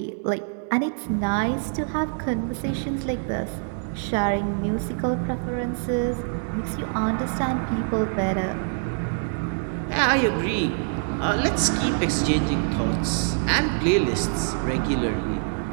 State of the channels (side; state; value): left; silent; digital silence